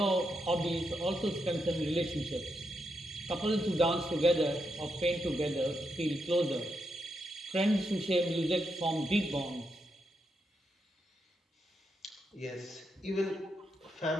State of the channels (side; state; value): both; normal; correlation 0.83